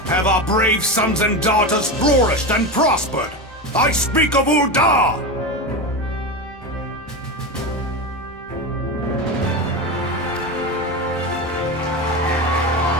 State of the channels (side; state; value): left; noise; hum, 29 dB below the sound